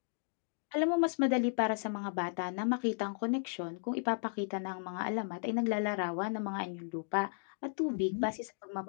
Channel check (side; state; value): right; silent; digital silence